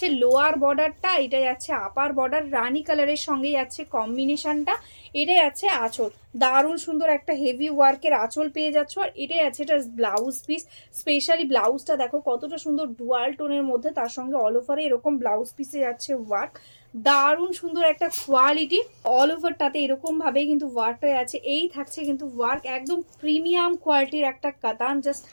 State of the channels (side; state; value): both; inverted; correlation -1.00